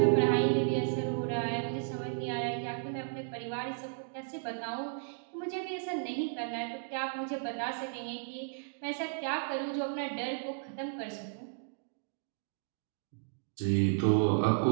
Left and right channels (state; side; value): silent; left; digital silence